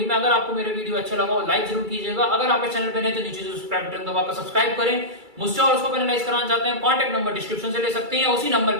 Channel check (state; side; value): late; left; 2.3 ms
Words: में। अगर आपको मेरा वीडियो अच्छा लगा हो लाइक जरूर कीजिएगा, अगर आप इस चैनल पे नए तो नीचे सब्सक्राइब बटन दबाकर सब्सक्राइब करें। मुझसे और उसको पेनलाइज कराना चाहते हैं कॉन्टैक्ट नंबर डिस्क्रिप्शन से ले सकते हैं, या उसी नंबर